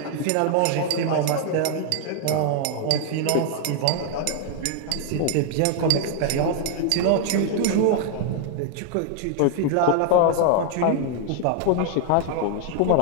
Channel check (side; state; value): both; different; correlation 0.00